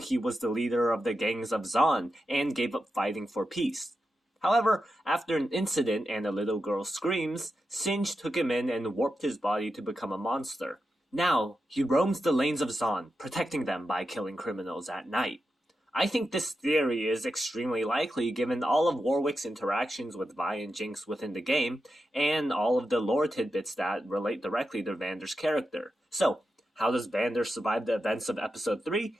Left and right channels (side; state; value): both; normal; correlation 0.89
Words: was the leader of the gangs of Zaun and gave up fighting for peace. However, after an incident and a little girl's screams, Singe took him in and warped his body to become a monster. Now, he roams the lanes of Zaun, protecting them by killing criminals at night. I think this theory is extremely likely given all of Warwick's interactions with Vi and Jinx within the game, and all of the lore tidbits that relate directly to Vander's character. So, how does Vander survive the events of Episode 3?